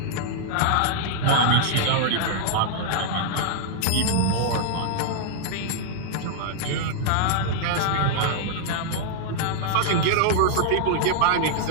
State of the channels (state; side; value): different; both; correlation -0.01